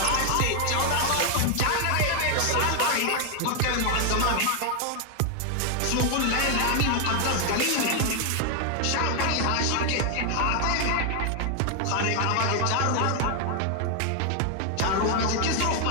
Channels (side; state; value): both; different; correlation 0.00